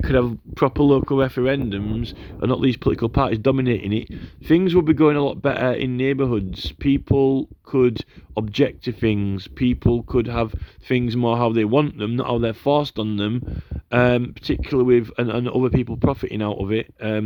have proper local referendums, and not these political parties dominating it, things would be going a lot better in neighbourhoods. People could object to things. People could have things more how they want them, not how they're forced on them. Particularly with and other people profiting out of it.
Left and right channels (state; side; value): identical; both; correlation 1.00